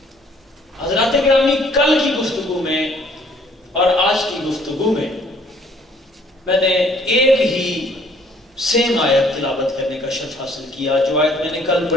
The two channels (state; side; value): normal; both; correlation 0.60